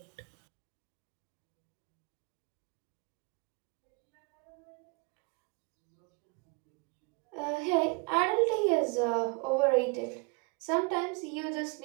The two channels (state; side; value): quieter; left; 31.4 dB